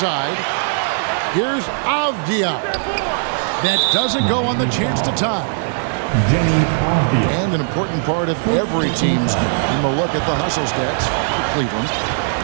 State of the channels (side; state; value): left; silent; digital silence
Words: Here's Avdia. That doesn't go on the chance to tie. And an important part of every team's game. A look at the hustle stats for Cleveland.